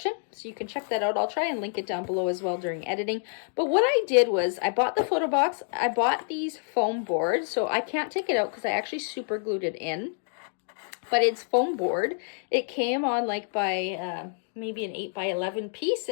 so you can check that out. I'll try and link it down below as well during editing. But what I did was I bought the photo box. I bought these foam boards, so I can't take it out because I actually super glued it in. But it's foam board. It came on like by maybe an 8x11 piece,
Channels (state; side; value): silent; right; 56 dB below the other